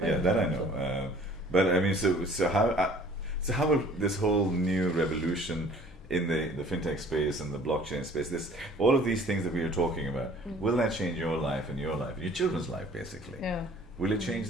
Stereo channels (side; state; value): both; normal; correlation 0.52